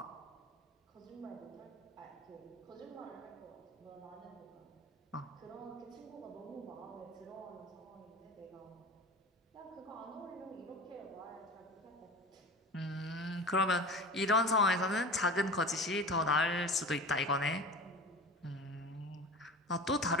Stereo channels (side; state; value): both; normal; correlation 0.34